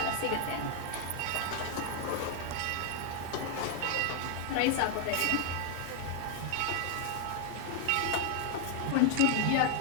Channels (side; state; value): both; different; correlation 0.00